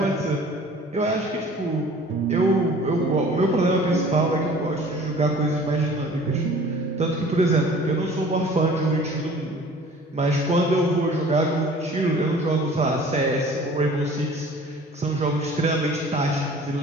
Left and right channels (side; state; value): both; normal; correlation 0.48